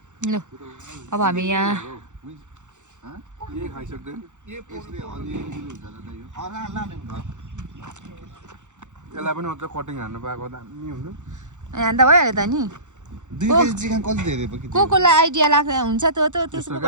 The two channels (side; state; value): left; late; 0.85 ms